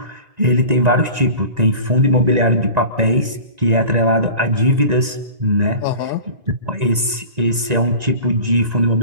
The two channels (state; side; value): late; left; 1.9 ms